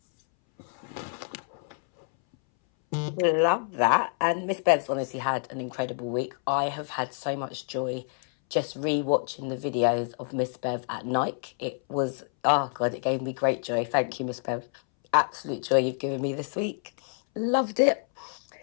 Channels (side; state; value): right; silent; 60 dB below the other